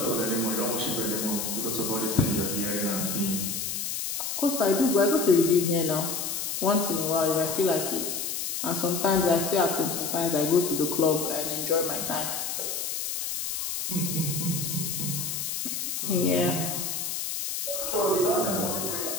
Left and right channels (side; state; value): left; noise; hiss, 3 dB below the sound